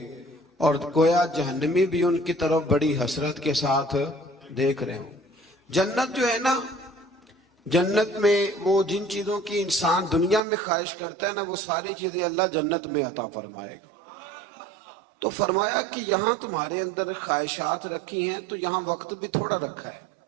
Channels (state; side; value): drops out; left; at 10.4 s